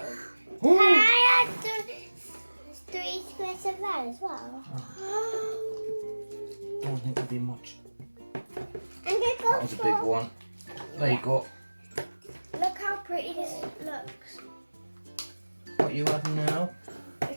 Ooh. Can I add 3 squirts of that as well? Don't think it'll be much. I'm gonna go That was a big one. There you go. Look how pretty this looks. What are you adding now?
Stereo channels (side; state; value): both; inverted; correlation -1.00